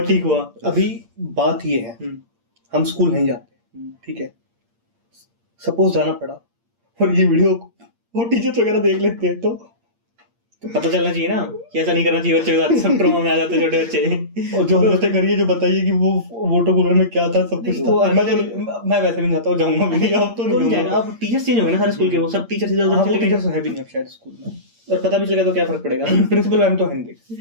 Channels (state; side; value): late; left; 8.7 ms